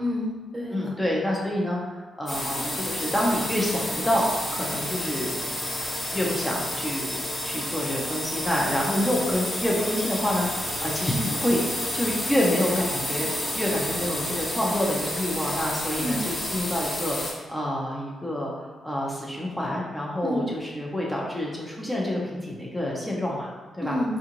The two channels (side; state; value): both; normal; correlation 0.86